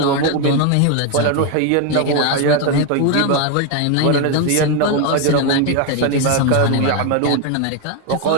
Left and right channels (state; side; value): different; both; correlation 0.01